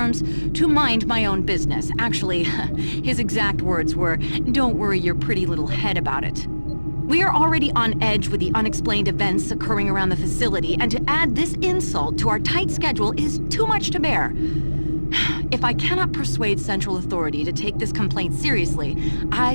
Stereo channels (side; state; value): both; inverted; correlation -1.00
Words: to mind my own business. Actually, his exact words were, "Don't worry your pretty little head about it." We are already on edge with the unexplained events occurring around the facility, and to add this insult to our tight schedule is too much to bear. If I cannot persuade Central Authority to take this complaint seriously,